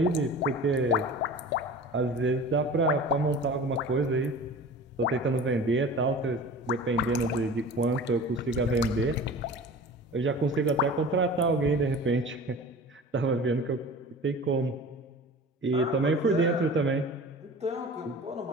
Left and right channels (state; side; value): normal; both; correlation 0.38